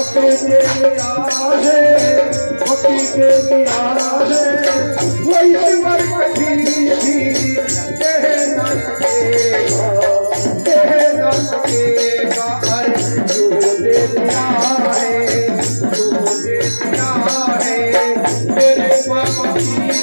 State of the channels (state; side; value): inverted; both; correlation -1.00